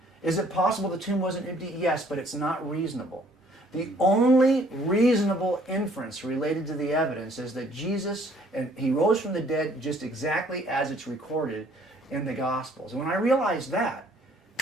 Is it possible the tomb wasn't empty? Yes, but it's not reasonable. The only reasonable inference related to the evidence is that Jesus, and he rose from the dead just exactly as it's recorded in the Gospels. And when I realized that,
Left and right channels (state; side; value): normal; both; correlation 0.61